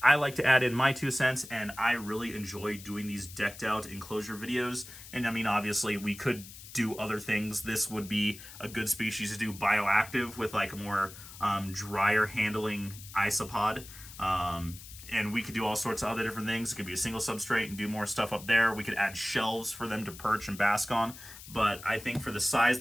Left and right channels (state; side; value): noise; left; hiss, 16 dB below the sound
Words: I like to add in my 2 cents, and I really enjoy doing these decked out enclosure videos. And I mean, obviously we could do other things. This would be a good species to do bioactive with like a more drier handling isopod. And we could do all sorts of other different things. It could be a single substrate and do more stuff up there. We could add shelves for them to perch and bask on. But I think for the size